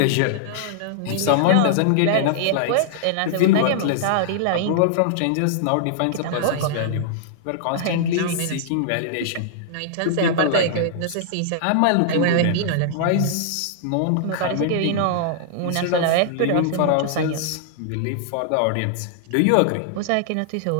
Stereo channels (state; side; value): different; both; correlation -0.01